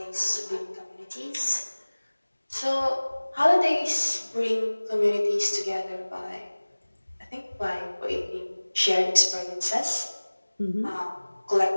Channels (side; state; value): both; inverted; correlation -1.00